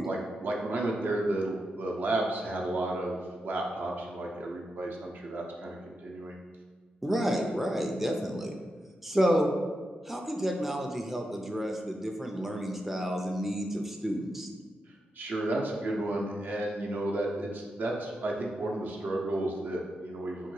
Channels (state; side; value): normal; both; correlation 0.87